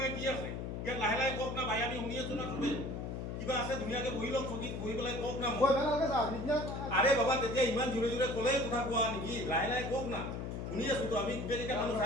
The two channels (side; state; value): left; noise; hum, 5 dB below the sound